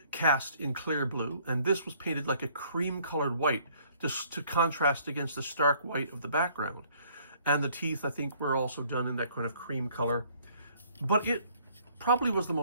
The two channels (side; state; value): both; inverted; correlation -0.61